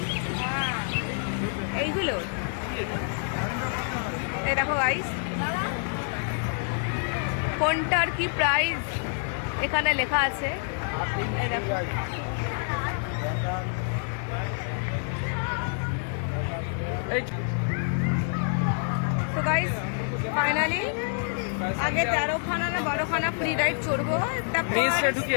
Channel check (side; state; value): right; silent; 60 dB below the other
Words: এইগুলো এই দেখো গাইস, কোনটার কি প্রাইস এখানে লেখা আছে। এই দেখো, তো গাইস ফাইনালি আগে 13খানা না 12খানা ফ্রি রাইড চড়বো, তারপর